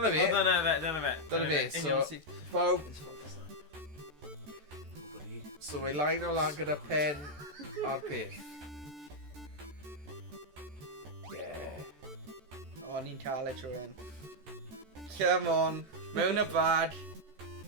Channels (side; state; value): left; late; 14 ms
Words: fi. Dyna fe. Dyna fi, so... Pawb, so mae line o lan gyda pen a'r peth. Yeah. O, ni'n cael e trwy hyn. Come on, mewn y bad.